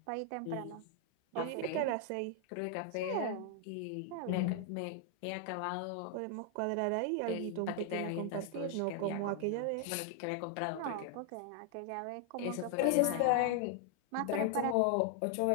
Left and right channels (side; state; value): both; different; correlation 0.00